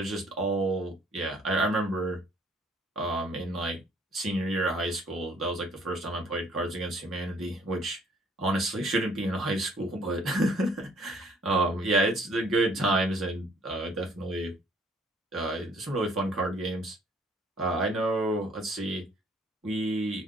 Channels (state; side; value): normal; both; correlation 0.60